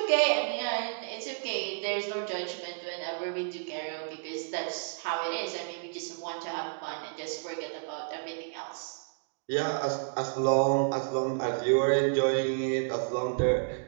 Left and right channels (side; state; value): left; silent; digital silence